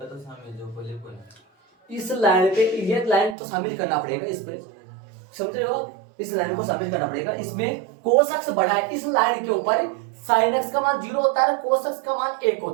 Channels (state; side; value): drops out; left; at 3.4 s